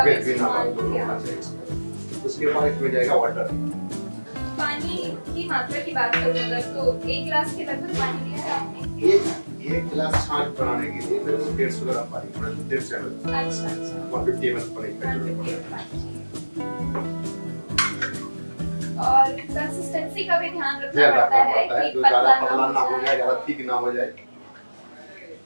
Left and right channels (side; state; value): both; inverted; correlation -1.00